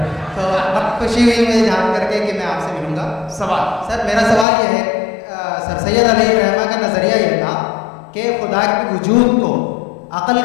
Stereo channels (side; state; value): right; drops out; at 4.5 s